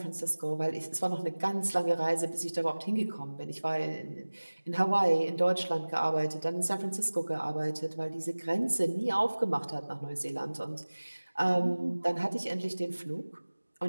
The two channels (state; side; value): inverted; both; correlation -1.00